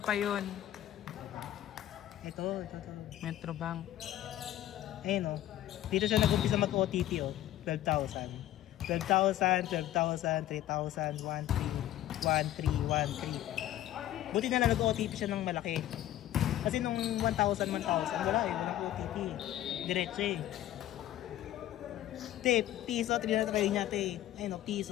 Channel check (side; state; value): right; quieter; 13.4 dB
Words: yun. Ito. Metrobank. Ayun o. Dito siya nag-umpisa mag-OTP o. 12,000. 12,000, 3,000, 13, 13. Buti na lang nag-OTP siya ng malaki. Kasi nung 1,000, wala eh. Walang OTP. Diretso eh. Te, piso, trinata kayo niya te. Ayun o,